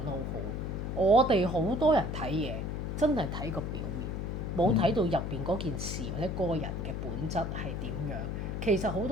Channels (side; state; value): left; noise; hum, 3 dB below the sound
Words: 得好好，我哋好多人睇嘢真係睇個表面，冇睇到入邊嗰件事或者嗰個人嘅本質係點樣。其實好